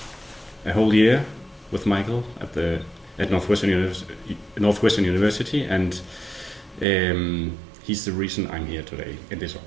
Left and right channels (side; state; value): left; drops out; at 6.9 s